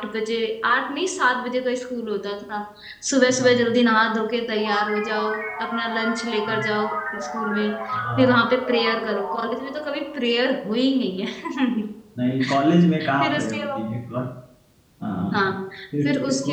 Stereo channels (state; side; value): identical; both; correlation 1.00